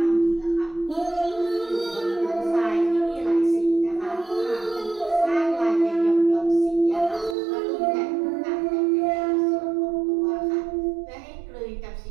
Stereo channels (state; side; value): drops out; left; at 7.4 s